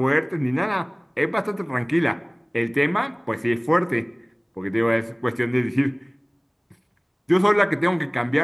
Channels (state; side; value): identical; both; correlation 1.00